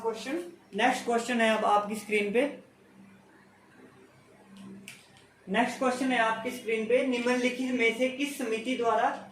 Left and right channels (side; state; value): both; identical; correlation 1.00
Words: क्वेश्चन। नेक्स्ट क्वेश्चन है अब आपकी स्क्रीन पे, नेक्स्ट क्वेश्चन है आपकी स्क्रीन पे, निम्नलिखित में से किस समिति द्वारा